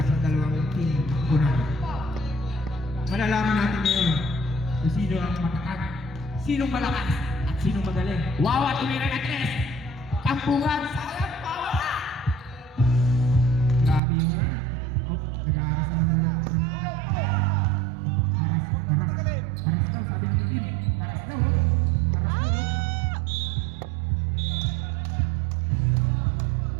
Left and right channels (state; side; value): drops out; left; at 14.0 s